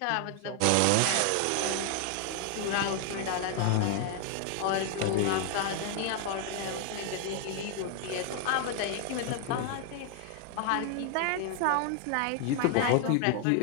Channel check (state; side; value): different; both; correlation 0.00